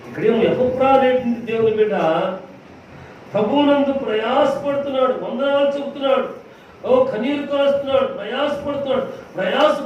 ఇక్కడేమో ఎపఫ్రా అనేటువంటి దేవుని బిడ్డ ప్రభువునందు ప్రయాసపడుతున్నాడు, వందనాలు చెబుతున్నాడు, కన్నీరు కాస్తున్నాడు,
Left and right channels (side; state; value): both; identical; correlation 1.00